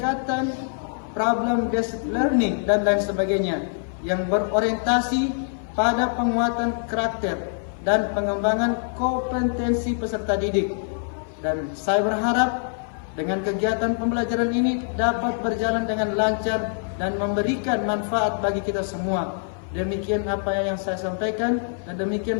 problem based learning dan lain sebagainya yang berorientasi pada penguatan karakter dan pengembangan kompetensi peserta didik. Dan saya berharap dengan kegiatan pembelajaran ini dapat berjalan dengan lancar dan memberikan manfaat bagi kita semua. Demikian apa yang saya sampaikan dan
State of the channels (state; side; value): silent; right; 57 dB below the other